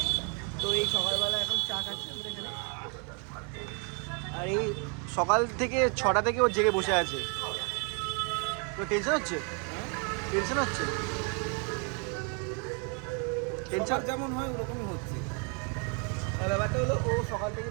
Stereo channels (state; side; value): quieter; left; 36.8 dB